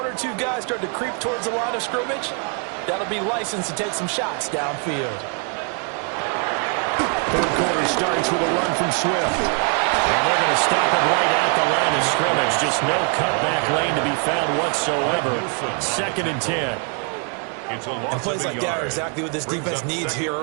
2 guys start to creep towards the line of scrimmage, that'll be licensed to take some shots downfield. Third quarter starts with a run from Swift. And they're going to stop it right at the line of scrimmage. Just no cutback lane to be found whatsoever. 2nd and 10. And plays like that are exactly what this defense needs here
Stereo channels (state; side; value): quieter; left; 38.7 dB